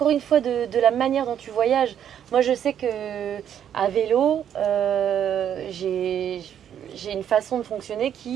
une fois de la manière dont tu voyages. Moi, je sais que à vélo, j'ai une façon de fonctionner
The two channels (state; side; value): quieter; left; 9.4 dB